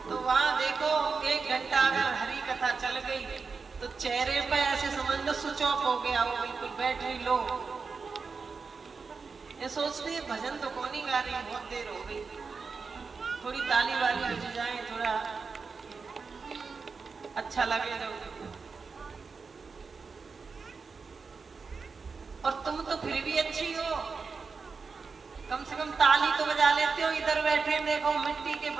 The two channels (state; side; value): quieter; left; 4.9 dB